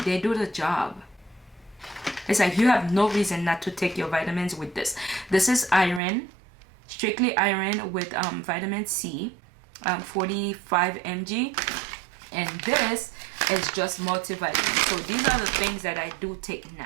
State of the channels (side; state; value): left; drops out; at 6.0 s